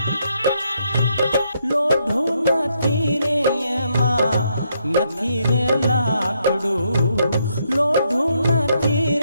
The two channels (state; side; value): inverted; both; correlation -0.76